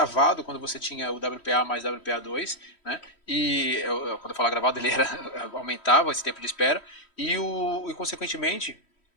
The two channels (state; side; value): late; right; 3.1 ms